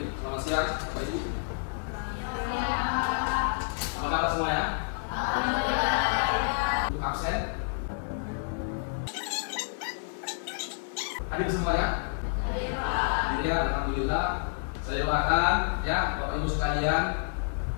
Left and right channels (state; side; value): silent; right; 58 dB below the other